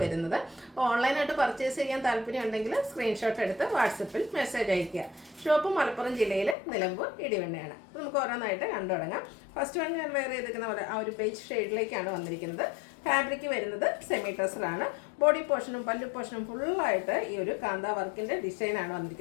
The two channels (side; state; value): right; drops out; at 6.6 s